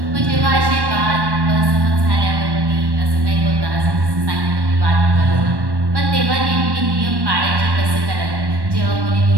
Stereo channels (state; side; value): late; left; 1.1 ms